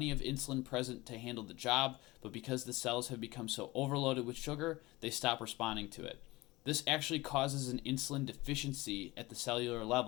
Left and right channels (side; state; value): right; quieter; 20.6 dB